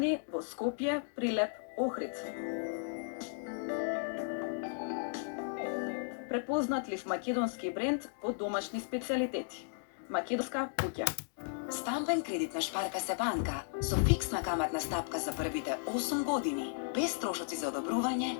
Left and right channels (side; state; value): right; silent; digital silence